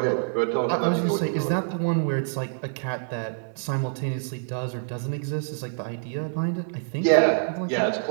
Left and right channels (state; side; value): silent; left; 61 dB below the other